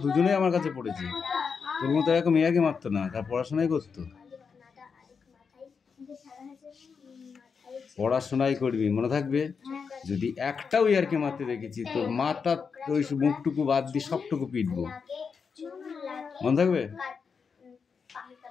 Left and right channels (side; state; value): right; quieter; 5.8 dB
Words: দুজনেই আমার কাছে পড়েছে। তোর মতো এরকম ইয়াকে মারতো না, তার পড়াশোনাই করতো। পড়াশোনাই করবি, মনে থাকবে। যদি একটাও ইয়ারকে মারতে দেখেছি তোর মাথা ওই মুখটুকু বাদ দিয়ে সবটুকু পিটবো, মনে থাকবে।